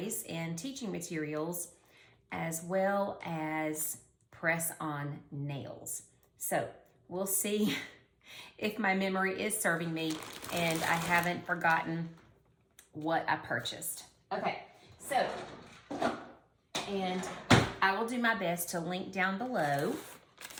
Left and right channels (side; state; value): both; identical; correlation 1.00